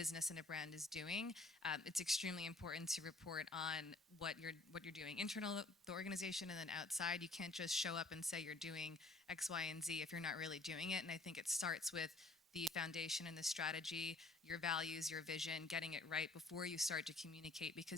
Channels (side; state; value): right; quieter; 3.1 dB